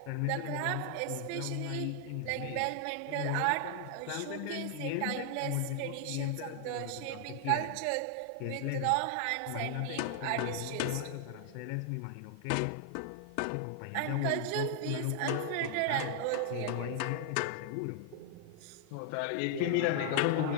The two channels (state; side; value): different; both; correlation 0.00